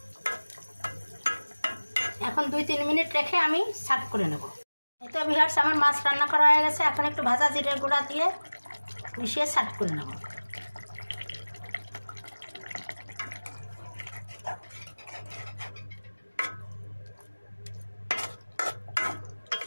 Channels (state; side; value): inverted; both; correlation -1.00